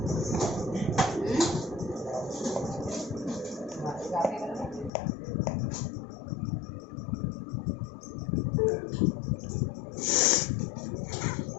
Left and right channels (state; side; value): drops out; right; at 4.9 s